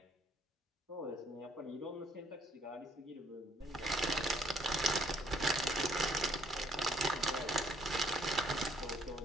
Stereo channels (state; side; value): normal; both; correlation 0.64